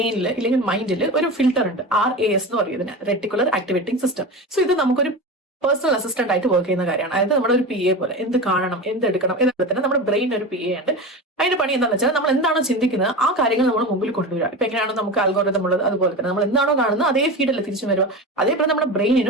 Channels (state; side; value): normal; both; correlation 0.26